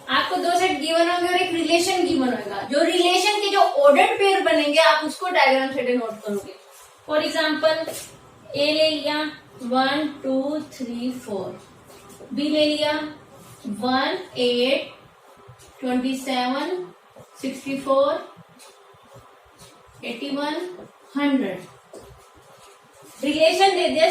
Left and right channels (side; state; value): both; identical; correlation 1.00